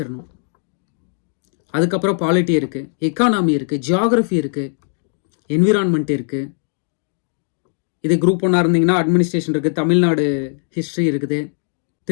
அதுக்கப்புறம் பாலிட்டி இருக்குது, எக்கானமி இருக்குது, ஜியாகிரஃபி இருக்குது, என்விரான்மெண்ட் இருக்குது. இது குரூப் 1 இருந்தீங்கன்னா அட்மினிஸ்ட்ரேஷன் இருக்குது, தமிழ்நாடு ஹிஸ்ட்ரி இருக்குது,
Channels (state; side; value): silent; right; digital silence